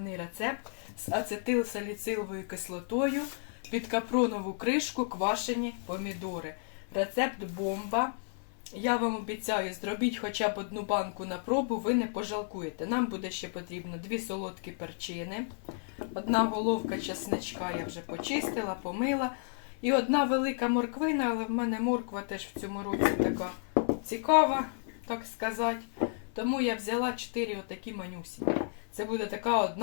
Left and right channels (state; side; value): silent; right; 56 dB below the other